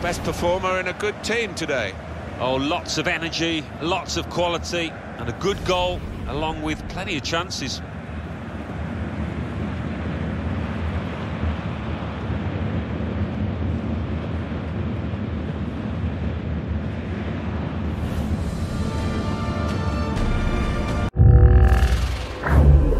best performer in a good team today. Oh, lots of energy, lots of quality, and a good goal, along with plenty of chances.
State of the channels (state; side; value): identical; both; correlation 1.00